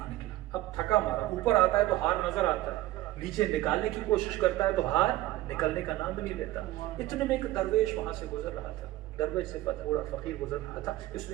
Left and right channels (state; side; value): quieter; left; 16.3 dB